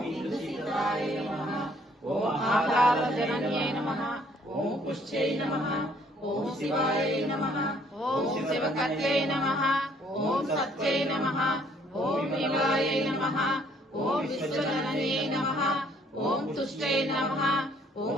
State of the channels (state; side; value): normal; both; correlation 0.63